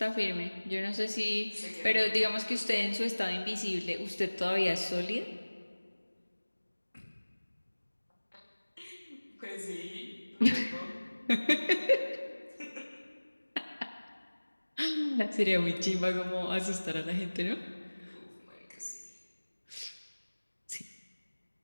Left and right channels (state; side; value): inverted; both; correlation -1.00